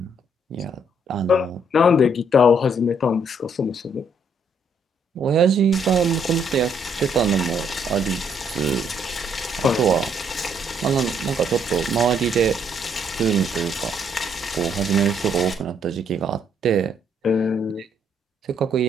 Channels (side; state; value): both; normal; correlation 0.70